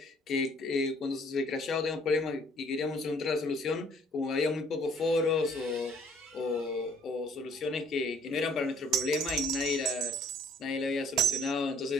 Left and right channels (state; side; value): normal; both; correlation 0.59